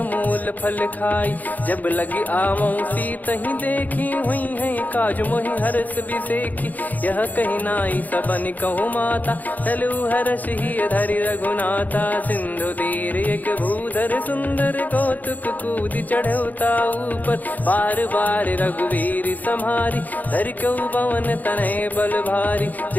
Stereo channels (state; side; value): late; right; 0.081 ms